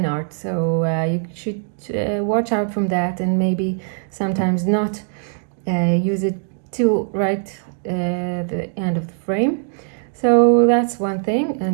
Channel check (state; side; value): silent; left; 65 dB below the other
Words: art. So you should watch out from that, and maybe sometimes not use it till right the end of the frame. So that's one thing.